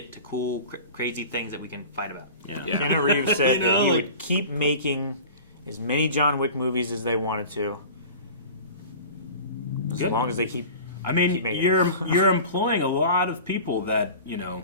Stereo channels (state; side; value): inverted; both; correlation -0.38